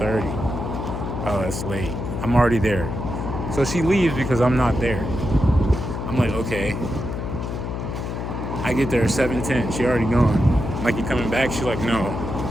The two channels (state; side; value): noise; left; hum, 4 dB below the sound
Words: Oh, that's late. I'm already there. So she leaves because I'm not there. I'm like, okay. I get there at 7:10. She already gone. I'm like, you coming back? She's like, no.